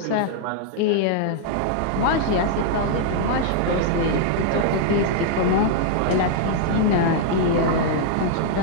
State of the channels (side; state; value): both; different; correlation -0.01